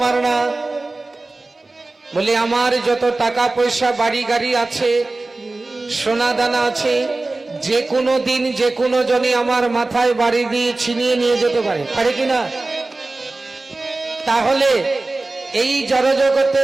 না? বলে আমার যত টাকা পয়সা, বাড়ি গাড়ি আছে, সোনা দানা আছে, যে কোনো দিন যে কোনো জনে আমার মাথায় বাড়ি দিয়ে ছিনিয়ে নিয়ে যেতে পারে কিনা? তাহলে এই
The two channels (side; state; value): left; quieter; 3.2 dB